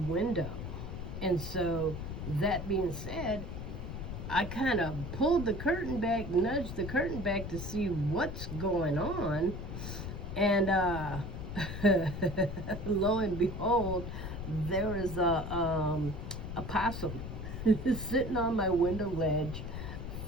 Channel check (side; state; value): left; noise; rumble, 6 dB below the sound